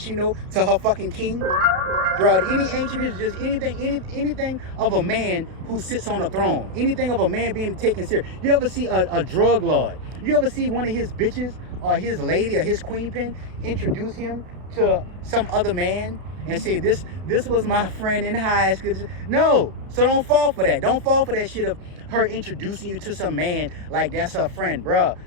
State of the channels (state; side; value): late; left; 32 ms